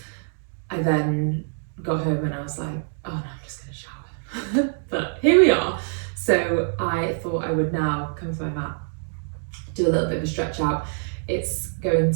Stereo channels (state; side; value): silent; left; digital silence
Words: I then got home and I was like, oh no, I'm just going to shower. But here we are. So I thought I would now come to my mat, do a little bit of a stretch out. It's going